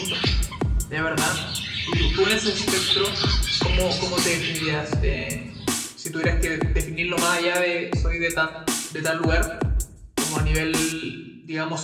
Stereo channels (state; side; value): identical; both; correlation 1.00